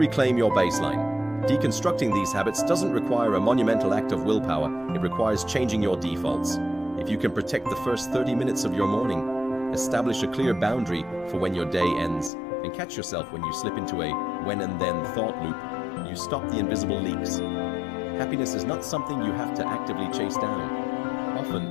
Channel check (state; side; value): drops out; right; at 12.3 s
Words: your baseline. Deconstructing these habits doesn't require a monumental act of willpower, it requires changing your defaults. If you can protect the first 30 minutes of your morning, establish a clear boundary for when your day ends, and catch yourself when you slip into a when and then thought loop, You stop the invisible leaks. Happiness is not something you have to actively chase down.